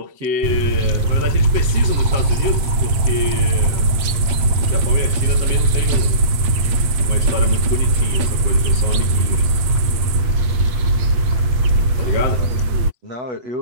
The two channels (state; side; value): late; left; 8.4 ms